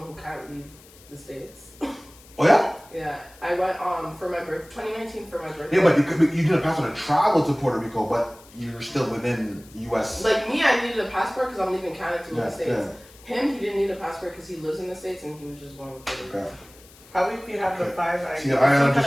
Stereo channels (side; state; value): left; noise; hiss, 24 dB below the sound